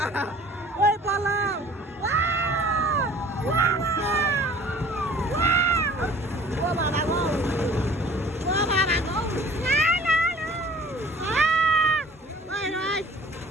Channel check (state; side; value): normal; both; correlation 0.49